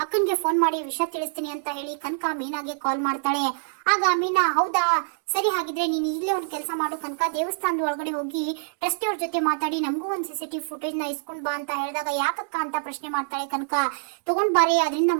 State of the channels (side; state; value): left; silent; digital silence